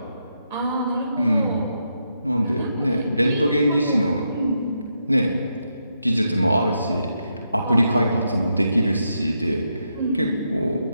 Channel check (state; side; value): inverted; both; correlation -0.82